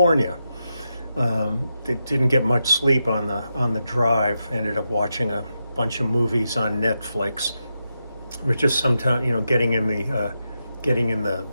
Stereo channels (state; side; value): inverted; both; correlation -0.87